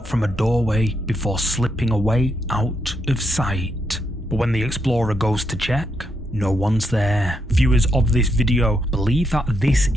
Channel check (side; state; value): both; normal; correlation 0.80